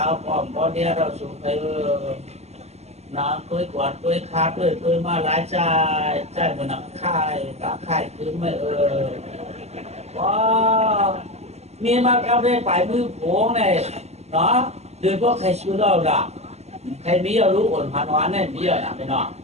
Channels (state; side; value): late; left; 0.31 ms